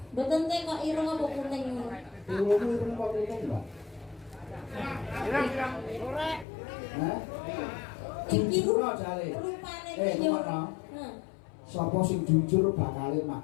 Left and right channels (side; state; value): right; drops out; at 6.5 s